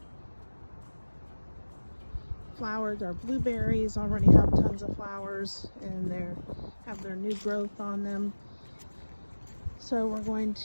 flowered. Our blueberries already have tons of flowers, and they have their new growth on them. So we're going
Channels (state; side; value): inverted; both; correlation -1.00